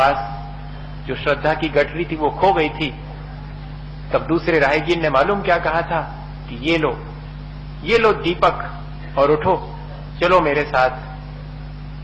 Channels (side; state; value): both; identical; correlation 1.00